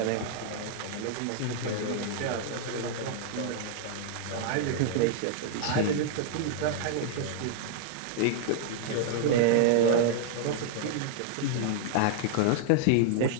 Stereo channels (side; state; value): both; different; correlation -0.01